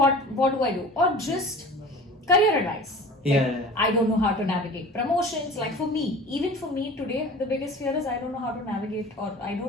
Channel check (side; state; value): both; normal; correlation 0.40